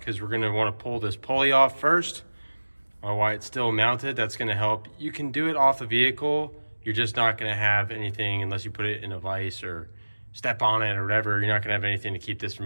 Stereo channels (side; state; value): both; inverted; correlation -1.00